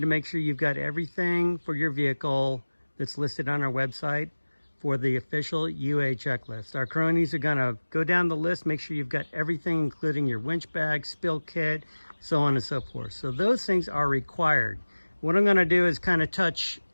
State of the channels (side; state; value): both; inverted; correlation -1.00